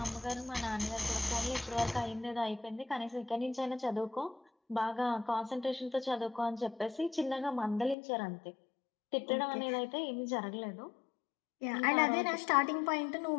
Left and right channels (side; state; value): right; drops out; at 8.0 s